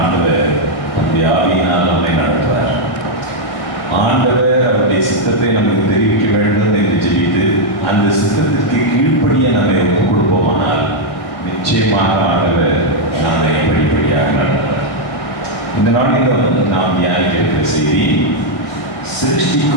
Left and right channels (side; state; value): right; late; 1.6 ms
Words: ஆண்டவர் நம்முடைய ஆவியினால் நம்மை நடத்துவார். ஆண்டவர் அவருடைய சித்தத்தை நமக்கு தெரிவிக்க வேண்டும் என்று ஜெபித்து அந்த சித்தத்திற்கு கீழ்ப்படிய நம்மை ஒப்புக் கொடுப்போமானால் நிச்சயமாக ஆண்டவர் நம்மை படிப்படியாக நடத்துவார். இந்த நாளில் நாம் தியானிக்கிற செய்தி